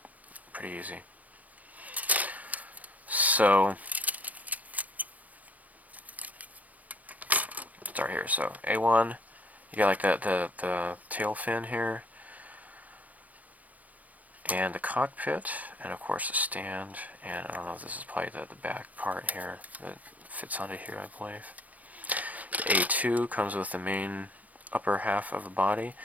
pretty easy. So start here. So A1, you got like the tail fin here, and the cockpit, and of course the stand, and I don't know if this is probably the back part here that fits onto here, I believe. The A2 comes with the main upper half of the body.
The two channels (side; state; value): left; late; 0.076 ms